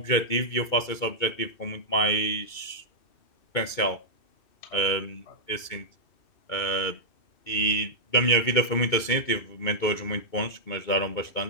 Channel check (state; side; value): late; right; 2.3 ms